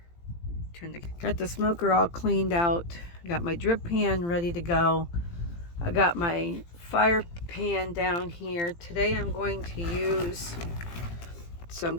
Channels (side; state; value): right; late; 17 ms